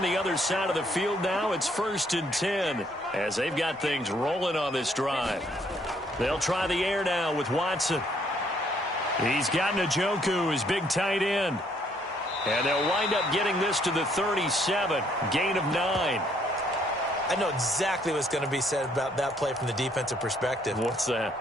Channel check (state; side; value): normal; both; correlation 0.67